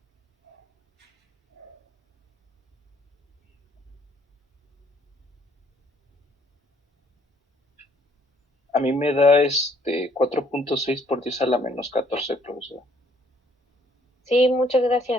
A mí me da 4.6 por 10 a la menos 14, profesora. Sí, muchas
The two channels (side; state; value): both; normal; correlation 0.64